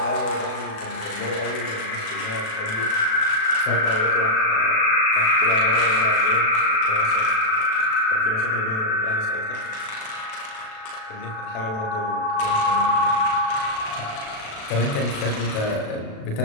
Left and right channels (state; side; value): late; right; 37 ms